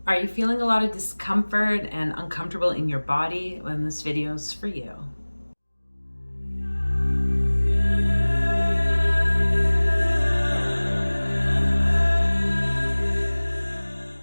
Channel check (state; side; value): inverted; both; correlation -1.00